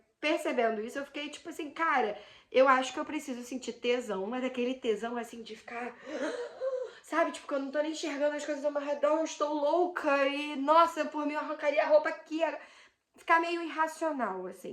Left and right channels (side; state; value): both; identical; correlation 1.00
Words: percebendo isso, eu fiquei tipo assim, cara, eu acho que eu preciso sentir tesão, mas aquele tesão assim de ficar... Sabe, tipo, que eu não tô nem enxergando as coisas ao meu redor, eu estou louca e, nossa, por mim eu arrancaria a roupa aqui. Ficar meio irracional,